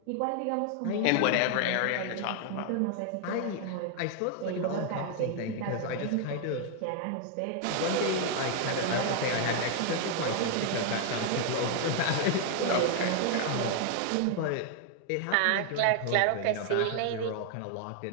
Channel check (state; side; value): different; both; correlation 0.00